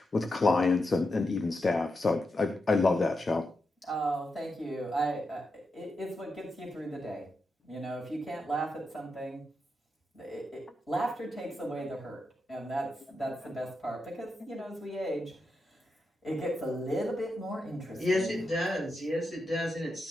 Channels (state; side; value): normal; both; correlation 0.86